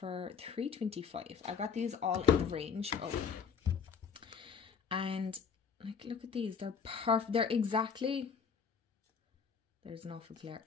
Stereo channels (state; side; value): quieter; right; 6.3 dB